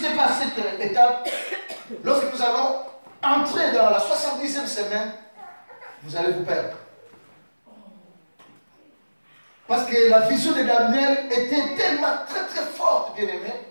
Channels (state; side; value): inverted; both; correlation -1.00